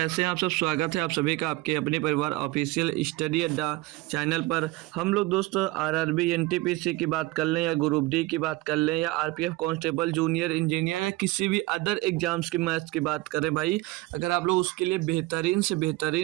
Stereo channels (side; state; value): left; quieter; 19.8 dB